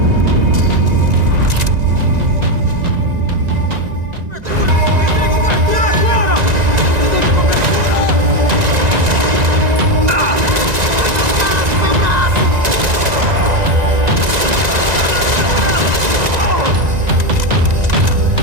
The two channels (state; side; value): late; left; 1.9 ms